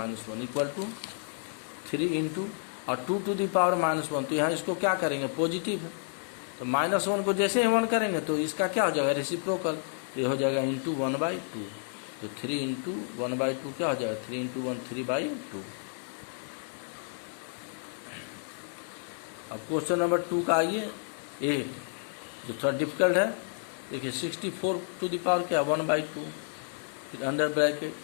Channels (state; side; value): silent; right; 57 dB below the other